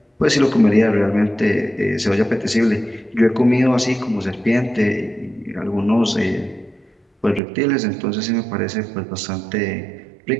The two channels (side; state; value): left; drops out; at 7.4 s